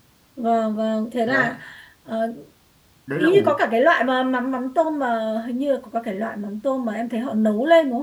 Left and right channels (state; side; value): identical; both; correlation 1.00